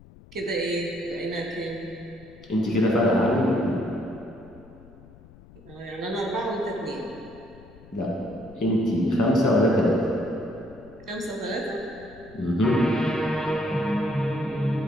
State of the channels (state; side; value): noise; left; rumble, 22 dB below the sound